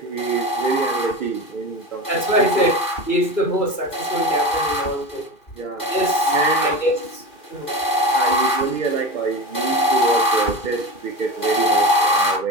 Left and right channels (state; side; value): late; right; 2.4 ms